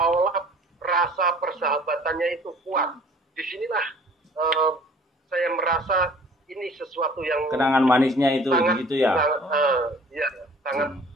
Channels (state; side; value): normal; both; correlation 0.50